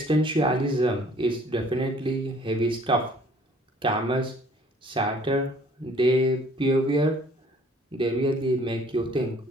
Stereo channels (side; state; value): both; normal; correlation 0.57